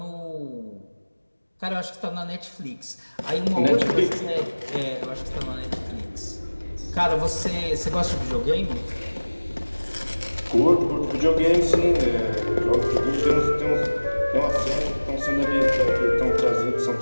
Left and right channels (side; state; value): both; inverted; correlation -1.00